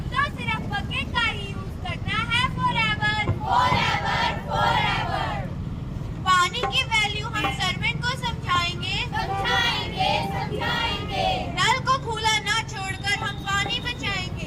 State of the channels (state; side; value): identical; both; correlation 1.00